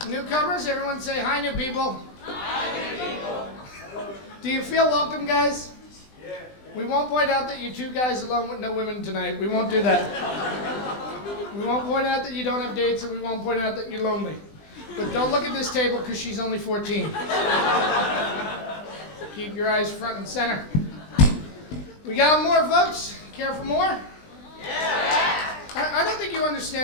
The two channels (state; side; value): late; right; 20 ms